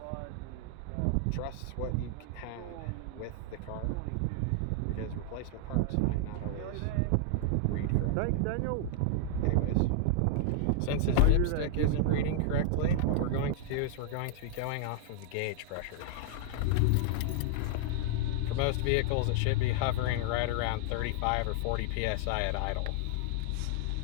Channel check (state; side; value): different; both; correlation 0.00